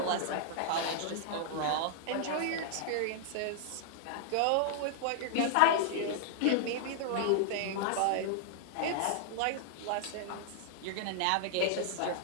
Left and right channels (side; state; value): both; different; correlation -0.01